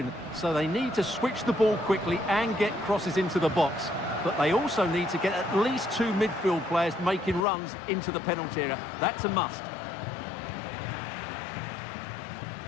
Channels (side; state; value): right; drops out; at 7.4 s